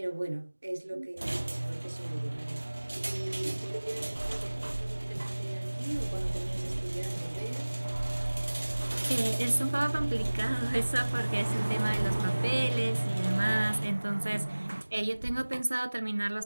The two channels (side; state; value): both; inverted; correlation -1.00